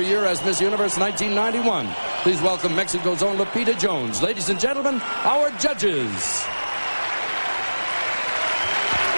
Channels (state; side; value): inverted; both; correlation -1.00